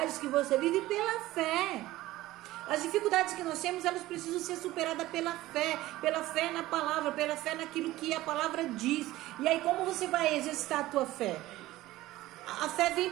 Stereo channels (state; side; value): quieter; left; 16.7 dB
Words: que você vive pela fé. As dificuldades que nós temos, elas precisam ser superadas pela fé na palavra, pela fé naquilo que a palavra diz. E aí como você vai exercitar a tua fé? A fé vem